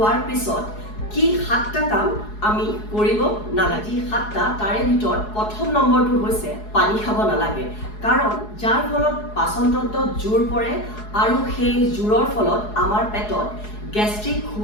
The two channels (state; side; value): late; right; 4.7 ms